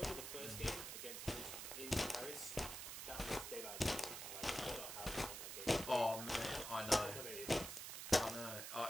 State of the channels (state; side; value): noise; right; hiss, 6 dB below the sound